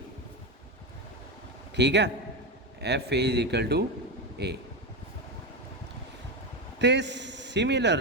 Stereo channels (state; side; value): normal; both; correlation 0.14